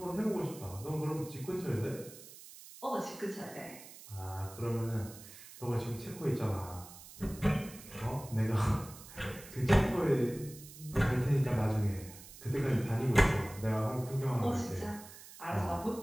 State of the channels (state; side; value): noise; right; hiss, 17 dB below the sound